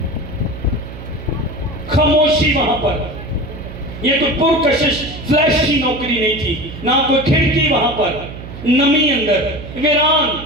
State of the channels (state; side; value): noise; right; hum, 12 dB below the sound